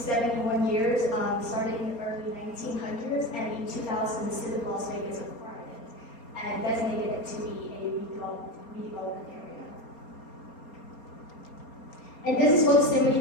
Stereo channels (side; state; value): right; late; 4.3 ms